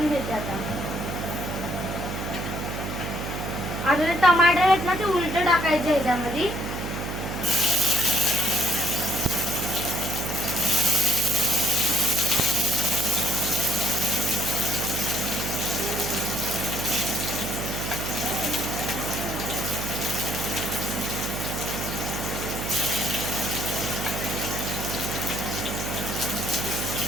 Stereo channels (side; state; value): right; noise; hum, 5 dB below the sound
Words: घेते. आता जे टमाटर आहेत ना ते उलट टाकायचे ह्याच्यामध्ये.